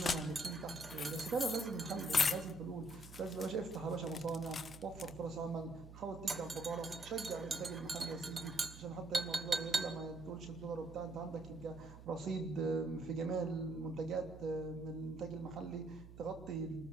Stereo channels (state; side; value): noise; right; hum, 15 dB below the sound